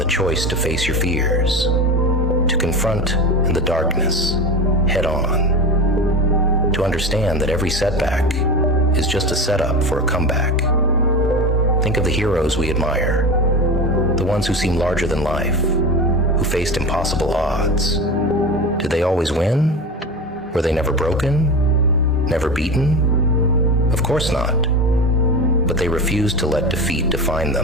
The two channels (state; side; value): normal; both; correlation 0.26